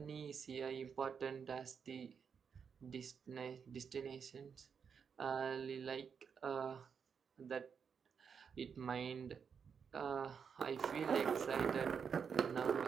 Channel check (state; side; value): quieter; left; 6.6 dB